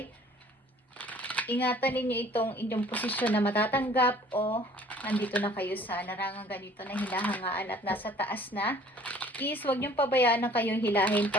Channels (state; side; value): normal; both; correlation 0.53